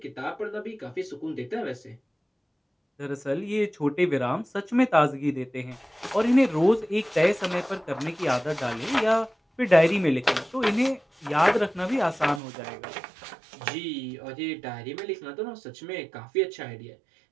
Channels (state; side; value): drops out; left; at 12.4 s